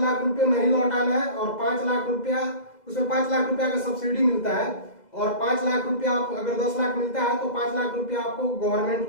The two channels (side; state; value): right; late; 2.0 ms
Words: रुपए नहीं लौटाना है और 5 लाख रुपया उसमें 5 लाख रुपया का सब्सिडी मिलता है और 5 लाख रुपया आप अगर 10 लाख मिलता है तो 5 लाख रुपया आपको गवर्नमेंट